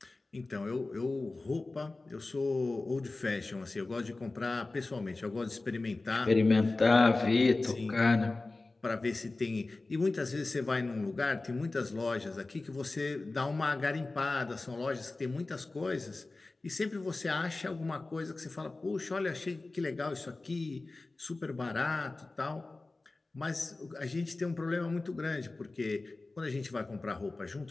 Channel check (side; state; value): right; quieter; 3.3 dB